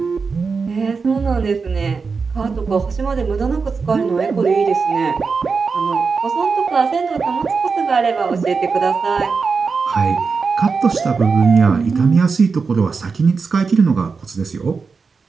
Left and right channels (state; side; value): quieter; left; 4.9 dB